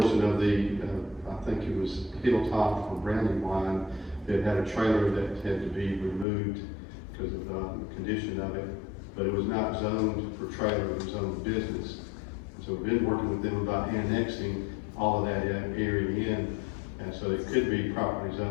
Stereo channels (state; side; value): drops out; right; at 6.2 s